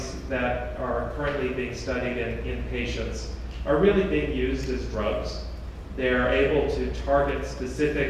that are currently being studied in patients are really being used as drugs. They're able to target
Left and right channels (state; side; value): identical; both; correlation 1.00